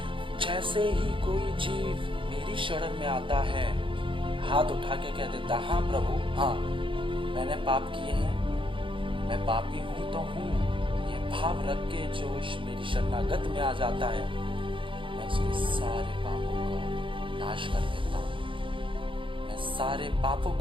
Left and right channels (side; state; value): left; late; 0.25 ms